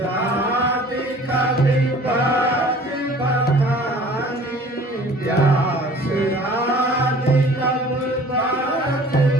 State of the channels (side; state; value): both; normal; correlation 0.49